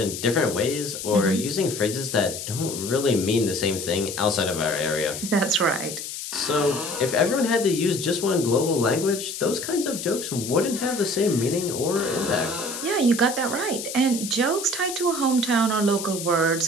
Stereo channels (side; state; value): left; noise; hiss, 7 dB below the sound